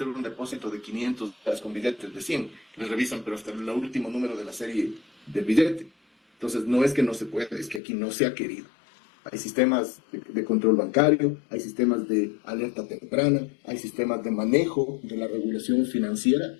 un depósito de 500 dólares con billetes de 100, le revisan, pero hasta el último número de la serie del billete. Entonces, no es que no se pueda, es que aquí no se ha querido. Hay sistemas de control bancario, hay sistemas de alerta temprana, hay sistemas de manejo de la regulación financiera.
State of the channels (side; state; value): right; drops out; at 7.8 s